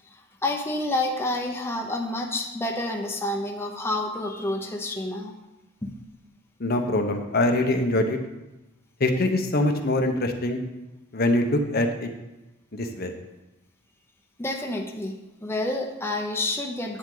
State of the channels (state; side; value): normal; both; correlation 0.39